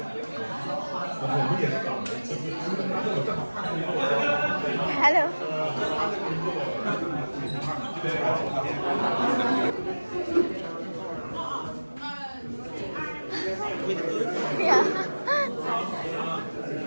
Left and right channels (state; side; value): inverted; both; correlation -1.00